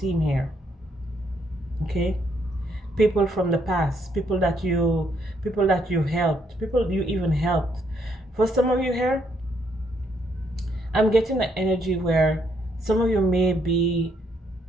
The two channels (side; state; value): both; normal; correlation 0.72